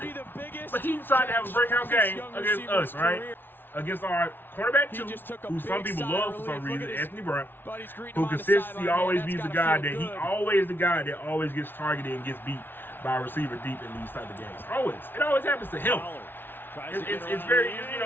But he decided to have a breakout game against us, right? Against our cornerback 2, who some people love for some reason, Anthony Brown, who consistently always be the guy that always gets targeted and gets beat by a receiver deep in these type of games. Always. It always happens to him. It's very, you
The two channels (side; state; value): right; late; 0.10 ms